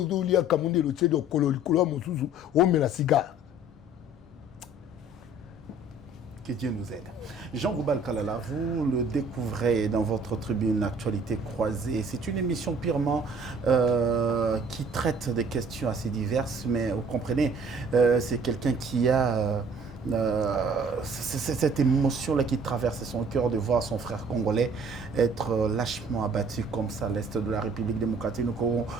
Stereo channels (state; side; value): normal; both; correlation 0.54